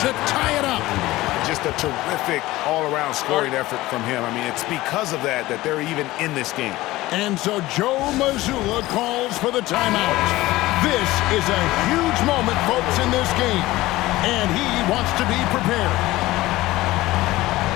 to tie it up. Just a terrific all-around scoring effort from him. I mean, it's because of that they're even in this game. And so Joe Mazzulla calls for the timeout. This is a huge moment, folks, in this game. And he wants to be prepared.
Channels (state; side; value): quieter; right; 17.9 dB